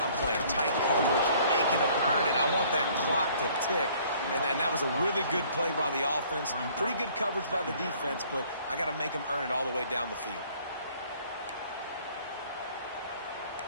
I'm playing tight coverage, making them earn it. I want that clock to tick. And then that was a really good play by the offense. Pretty good coverage by the defense, but I got to make them earn it all the way down the field.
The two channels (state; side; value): inverted; both; correlation -0.57